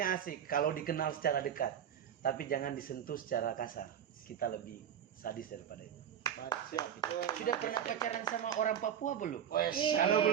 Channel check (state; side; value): quieter; left; 9.1 dB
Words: asik kalau dikenal secara dekat, tapi jangan disentuh secara kasar. Kita lebih sadis daripada itu. Baik, siap. Sudah pernah pacaran sama orang Papua belum? Wes, Kalau